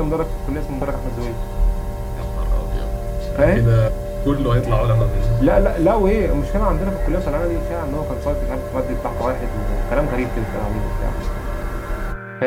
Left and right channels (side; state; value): both; identical; correlation 1.00